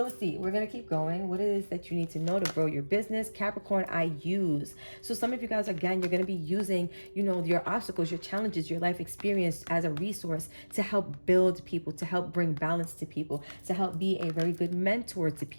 let's see, we're going to keep going. What it is that you need to know to grow your business. Capricorn, I use. So some of you guys, again, you're going to be using, your obstacles, your challenges, your life experience as a resource to help build people, to help bring balance to people, to help be a very good mentor to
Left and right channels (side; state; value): both; inverted; correlation -1.00